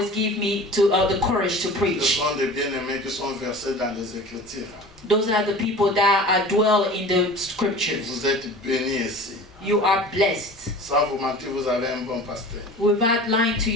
give me the courage to Ce preach. sont des bien-aimés qui sont versés dans les Écritures. Those are the people that dwell in the scriptures. Vous êtes bénis ici. You are blessed. Sans vous mentir, vous avez un bon pasteur. Without lying to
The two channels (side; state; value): both; normal; correlation 0.39